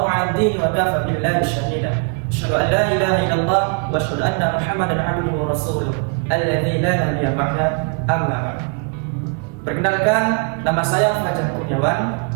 'alad din wa kafa billahi shahida. Asyhadu an la ilaha illallah wa asyhadu anna Muhammadan 'abduhu wa rasuluh alladzi la nabiyya ba'da, amma ba'd. Perkenalkan, nama saya Fajar Kurniawan.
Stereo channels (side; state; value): left; quieter; 36.4 dB